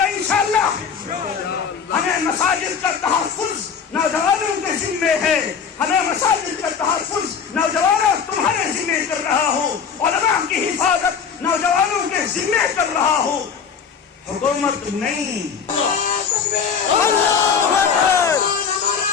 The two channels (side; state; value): right; quieter; 6.6 dB